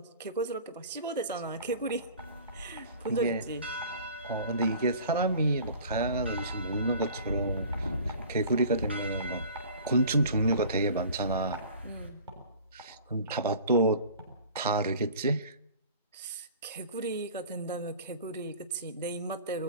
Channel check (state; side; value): inverted; both; correlation -0.44